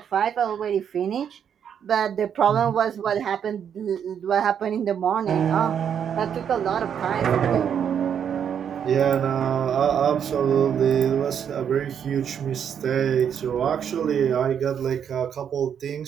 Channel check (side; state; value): left; quieter; 8.3 dB